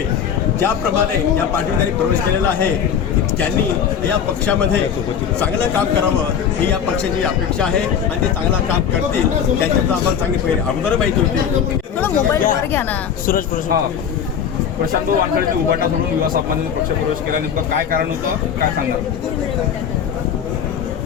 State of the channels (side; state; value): right; quieter; 8.0 dB